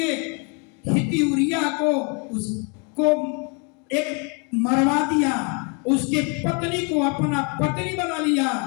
हित्ती उरिया को उसको एक मरवा दिया, उसके पत्नी को अपना पत्नी बना लिया।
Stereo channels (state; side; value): quieter; right; 35.2 dB